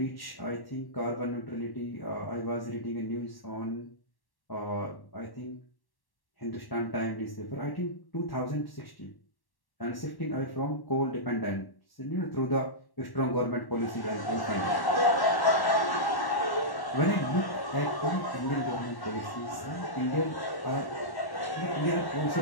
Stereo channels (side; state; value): right; late; 1.1 ms